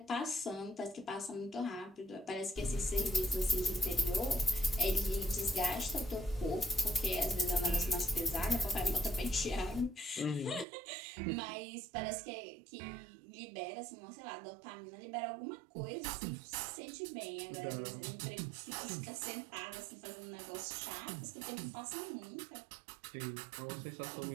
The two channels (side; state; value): left; drops out; at 10.7 s